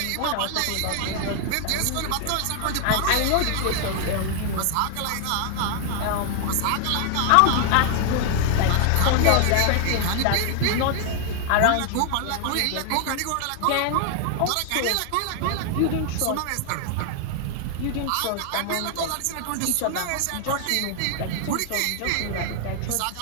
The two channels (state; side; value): different; both; correlation 0.00